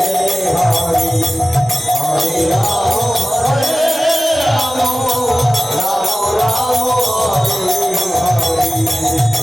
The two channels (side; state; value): both; normal; correlation 0.97